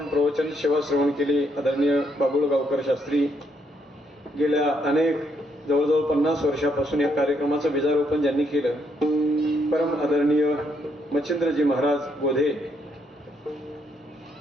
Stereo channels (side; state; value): both; normal; correlation 0.74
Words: प्रवचन सेवा श्रवण केली आदरणीय बाबुळ गावकर शास्त्री गेल्या अनेक जवळजवळ 50 वर्षापासून या कार्यक्रमाचं बीजारोपण ज्यांनी केलं परम आदरणीय मच्छिंद्रजी महाराज गोधे